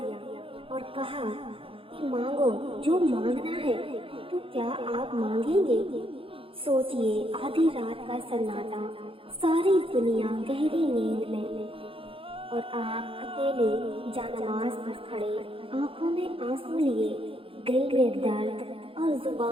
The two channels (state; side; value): late; left; 0.26 ms